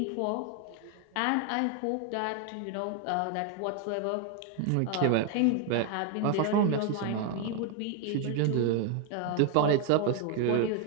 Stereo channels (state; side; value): different; both; correlation 0.01